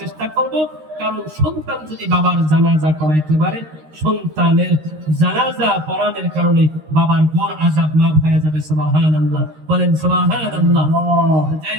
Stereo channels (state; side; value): late; left; 13 ms